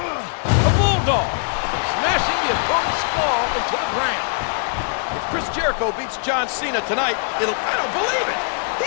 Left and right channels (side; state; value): right; silent; digital silence